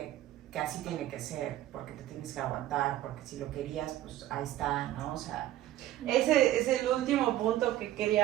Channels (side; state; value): left; quieter; 14.0 dB